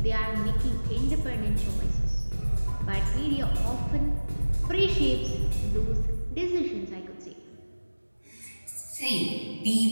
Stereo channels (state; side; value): inverted; both; correlation -1.00